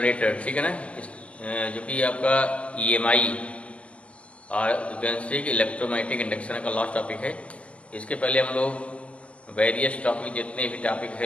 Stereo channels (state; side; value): late; right; 0.062 ms